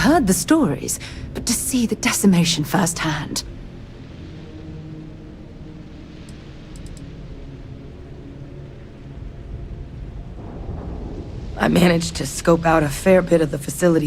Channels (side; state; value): both; identical; correlation 1.00